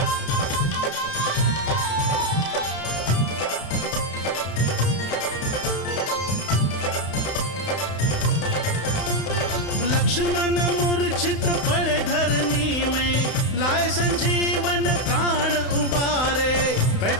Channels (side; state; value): right; late; 31 ms